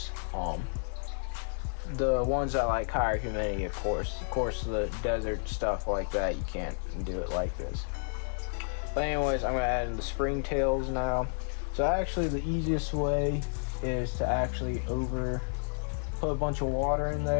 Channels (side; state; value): right; silent; digital silence